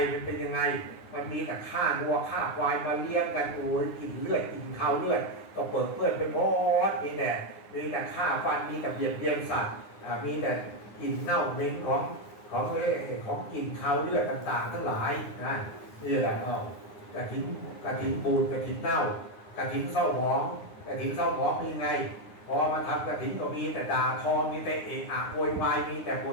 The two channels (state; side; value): late; right; 9.7 ms